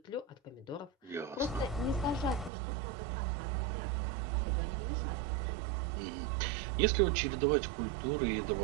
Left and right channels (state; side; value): drops out; left; at 2.5 s